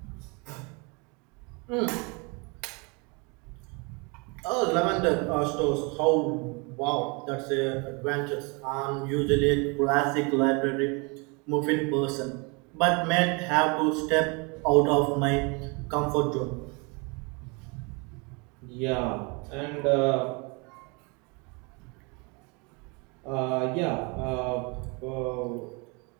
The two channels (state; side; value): quieter; left; 30.6 dB